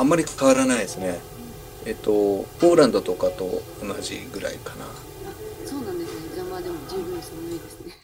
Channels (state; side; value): identical; both; correlation 1.00